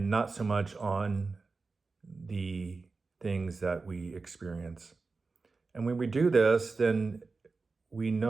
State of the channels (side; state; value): left; quieter; 4.1 dB